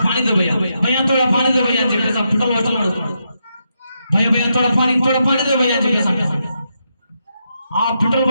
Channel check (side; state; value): both; inverted; correlation -0.82